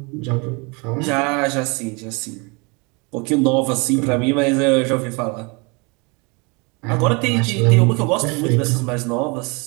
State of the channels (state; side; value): quieter; left; 30.1 dB